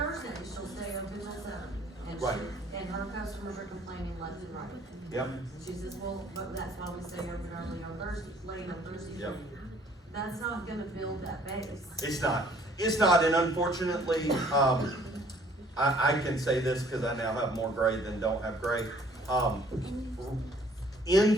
she'll stay open till 7. And Right. and her customers are complaining left and right. Yep. She says, well, but that's why we stay open early on Thursday, late on Thursday. Yep. That's not gonna build that base. It's not. It's not, and unfortunately, I can say this because I now have more gray than don't have gray. In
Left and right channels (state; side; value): normal; both; correlation 0.58